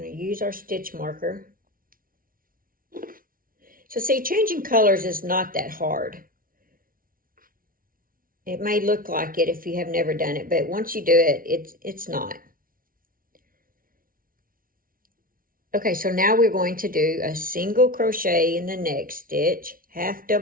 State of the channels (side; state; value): left; late; 0.41 ms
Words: to use our stitch marker. So see, changing colors is not that hard. It may look like it if you have never done it, but once you do it, it's not. Okay, so now we're going to do a single crochet in the next stitch, 1/2